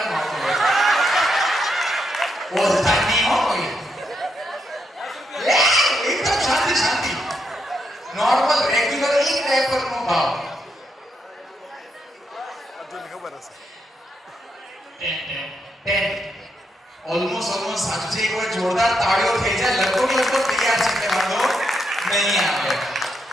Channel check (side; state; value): both; normal; correlation 0.80